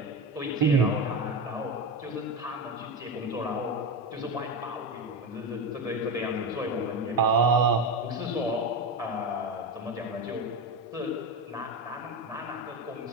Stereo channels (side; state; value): both; normal; correlation 0.18